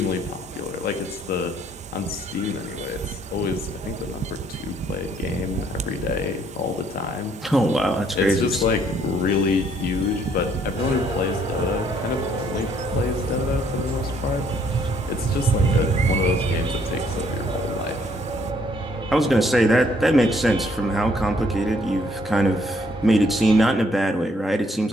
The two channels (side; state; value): both; normal; correlation 0.66